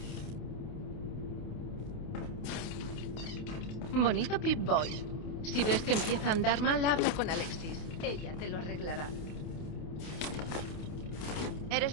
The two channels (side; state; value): right; late; 28 ms